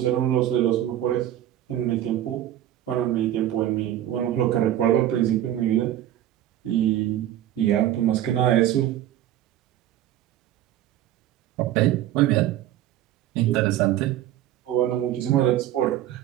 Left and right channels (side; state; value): left; quieter; 12.4 dB